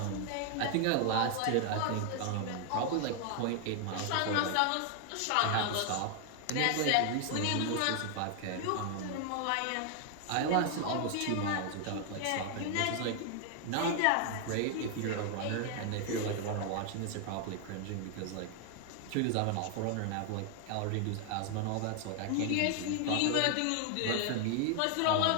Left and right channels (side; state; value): both; different; correlation 0.00